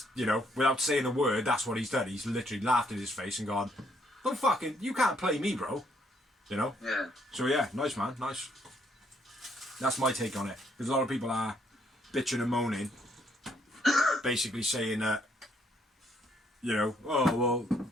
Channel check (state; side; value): normal; both; correlation 0.70